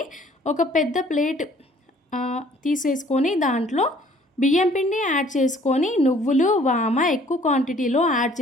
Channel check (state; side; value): normal; both; correlation 0.57